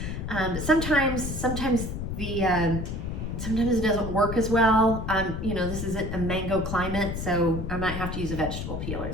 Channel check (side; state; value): left; noise; rumble, 4 dB below the sound